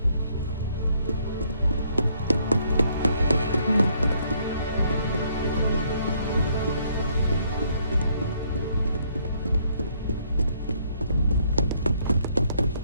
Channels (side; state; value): both; inverted; correlation -0.69